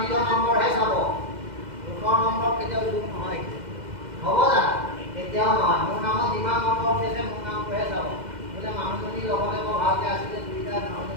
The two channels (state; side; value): late; left; 2.0 ms